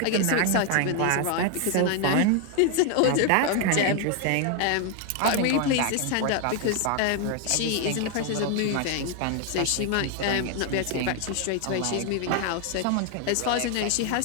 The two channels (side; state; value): both; different; correlation 0.01